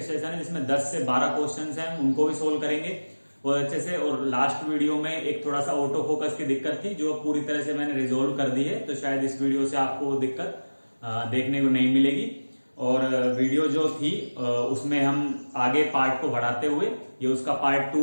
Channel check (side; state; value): both; inverted; correlation -1.00